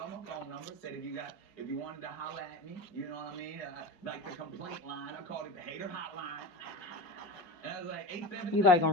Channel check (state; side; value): late; right; 5.2 ms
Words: my phone number. Said if you wanted to holler at me, you know what I mean? Like the complaint line. I called it the hater hotline. And I was like 877. You like